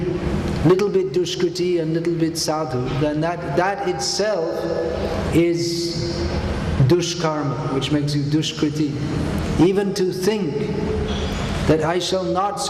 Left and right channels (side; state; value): both; identical; correlation 1.00